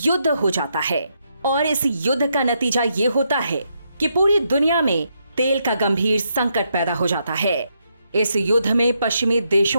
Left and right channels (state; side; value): inverted; both; correlation -0.79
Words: हो जाता है और इस युद्ध का नतीजा ये होता है कि पूरी दुनिया में तेल का गंभीर संकट पैदा हो जाता है। इस युद्ध में पश्चिमी